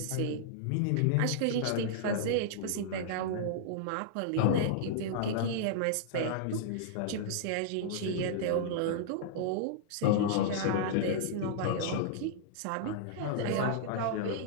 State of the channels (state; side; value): different; both; correlation -0.02